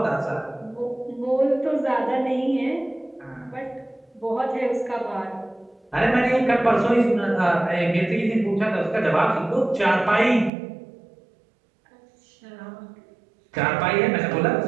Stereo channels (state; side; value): drops out; left; at 10.5 s